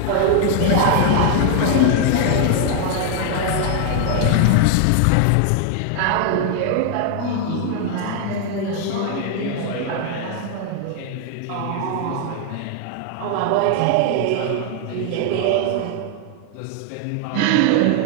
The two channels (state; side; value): different; both; correlation 0.00